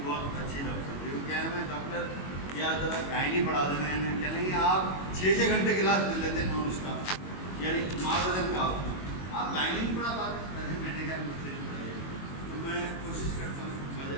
بہت اچھی ڈاکٹر تھی. وہ کیا ہے، میں ڈاکٹر یا ذرا گائنی پڑھا دینا ہے. انہیں کہیں گے آپ 6 گھنٹے کلاس لے لیتے ہیں نان اسٹاپ، یعنی معذرت کا ہوتا ہے، آپ گائنی نہیں پڑھا پاتے. میں نے کہا مجھ سے نہیں پڑھائیے. تو میں کوشش کرتا ہوں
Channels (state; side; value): late; right; 22 ms